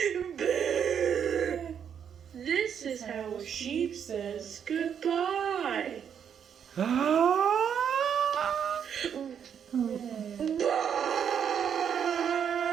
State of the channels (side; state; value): left; quieter; 8.1 dB